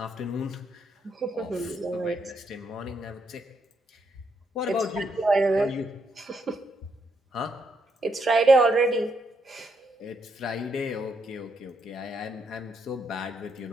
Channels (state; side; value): normal; both; correlation 0.77